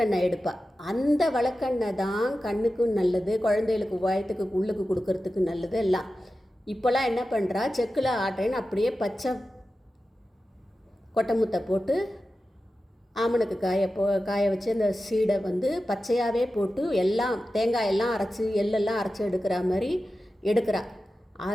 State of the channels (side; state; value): both; normal; correlation 0.93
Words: எடுப்பாள். அந்த விளக்கெண்ணெய் தான் கண்ணுக்கும் நல்லது, குழந்தைகளுக்கு வயத்துக்கு உள்ளுக்கு கொடுக்கறதுக்கு நல்லது எல்லாம். இப்போல்லாம் என்ன பண்ணுறா, செக்கில் ஆட்டுறேன்னு அப்படியே பச்சை கொட்டமுத்தை போட்டு ஆமணக்கு காய வச்சு அந்த சீடை பச்சையாகவே போட்டு எல்லாம் தேங்காயெல்லாம் அரைச்சி எள்ளெல்லாம் அரைச்சி எடுக்கிற மாதிரி எடுக்கிறா.